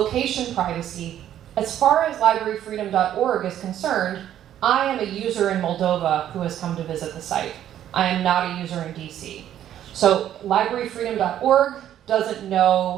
privacy, as far as libraryfreedom.org is concerned, I am a user in Moldova who has come to visit the site. I am not a user in DC. So libraryfreedom.org doesn't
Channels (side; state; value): left; quieter; 11.2 dB